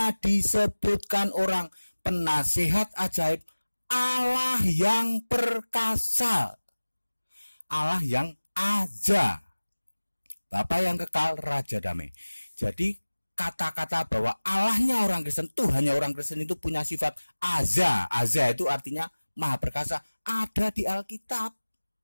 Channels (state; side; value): inverted; both; correlation -1.00